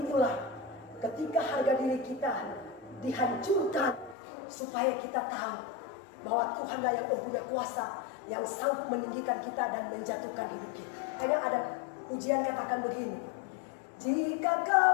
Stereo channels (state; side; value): drops out; right; at 4.2 s